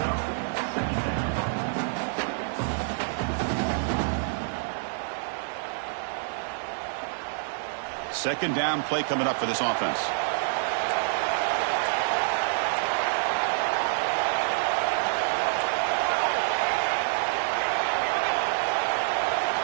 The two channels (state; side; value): silent; left; digital silence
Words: Second down play coming up for this offense.